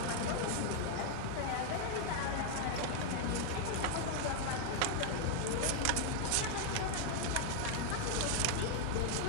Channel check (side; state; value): both; different; correlation 0.00